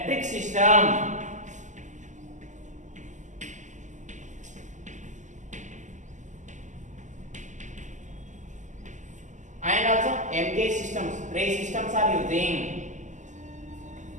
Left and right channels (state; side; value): late; left; 0.35 ms